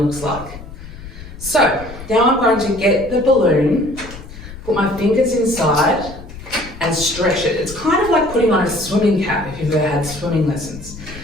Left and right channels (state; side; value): noise; left; rumble, 14 dB below the sound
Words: looks like. So now I'm going to get the balloon, put my fingers inside and stretch it. It's kind of like putting on a swimming cap if you've ever had swimming lessons.